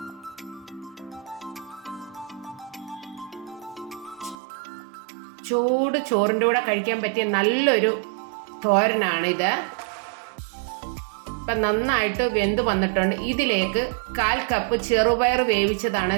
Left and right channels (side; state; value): left; drops out; at 4.4 s